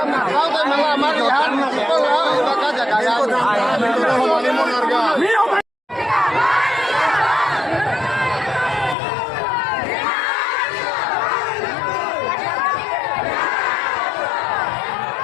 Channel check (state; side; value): drops out; right; at 9.0 s